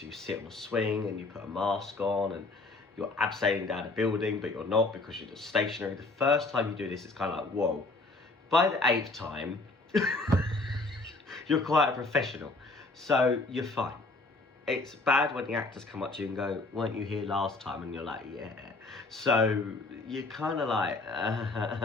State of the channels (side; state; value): right; quieter; 3.3 dB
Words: you sit on a swing and you put a mask on and you're abseiling down a building, but you're not, because you're just stationary. The first time you do this, it's kind of like, whoa. By the 8th time, you're quite a professional, so you're fine. It's bad when the actors come up to you and go, weren't you here last time? And you're like, yeah. So you're kind of like,